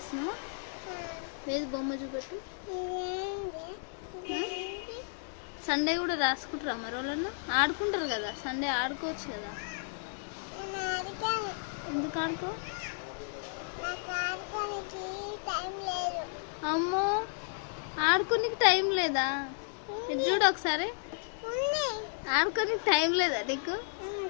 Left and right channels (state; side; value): silent; right; digital silence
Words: లేదు, బొమ్మ చూపెట్టు. సండే కూడా రాసుకుంటారా మరి వాళ్ళన్నా? ఆడుకుంటారు కదా సండే, ఆడుకోవచ్చు కదా. ఎందుకు ఆడుకో? అమ్మో, ఆడుకోనికి టైం లేదా? ఇది చూడు ఒకసారి. ఆడుకోనికి టైం లేదా నీకు?